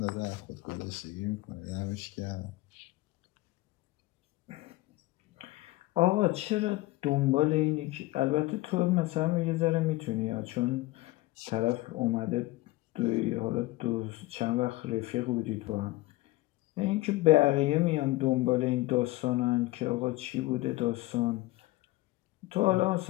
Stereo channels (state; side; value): quieter; right; 19.1 dB